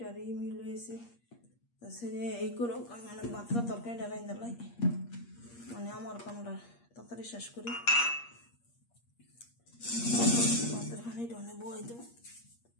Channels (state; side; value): late; right; 8.5 ms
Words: মিল হয়েছে। তা সেরে এই করো মানে ভাতটা তরকারিটা রাঁধতে লাই, মানে আমার কামটা তাড়াতাড়ি শেষ করি। ভাতের খানিটা অনেক বই দেবো।